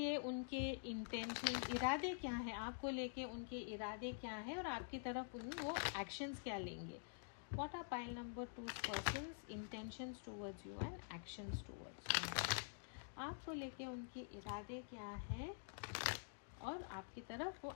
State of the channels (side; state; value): right; silent; digital silence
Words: उनके इंटेंशन, इरादे क्या है, आपको लेके उनके इरादे क्या है और आपकी तरफ वो एक्शंस क्या लेंगे। What are pile number 2's person's intentions towards you and actions towards you? आपको लेके उनके इरादे क्या है और आपकी तरफ वो